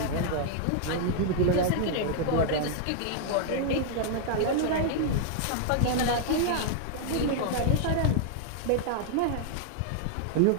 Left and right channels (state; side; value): different; both; correlation 0.00